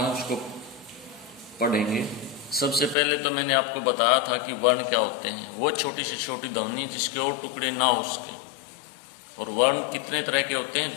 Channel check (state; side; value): drops out; right; at 3.0 s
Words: उसको पढ़ेंगे। सबसे पहले तो मैंने आपको बताया था कि वर्ण क्या होते हैं। वो छोटी से छोटी ध्वनि जिसके और टुकड़े ना हो उसके। और वर्ण कितने तरह के होते